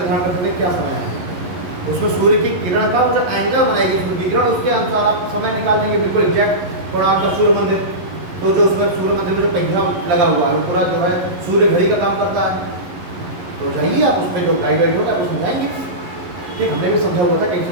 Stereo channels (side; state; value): left; late; 11 ms